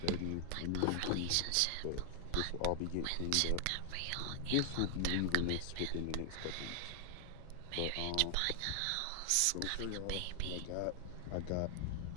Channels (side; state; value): both; different; correlation 0.00